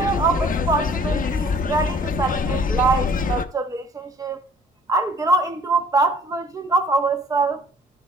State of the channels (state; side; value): normal; both; correlation 0.55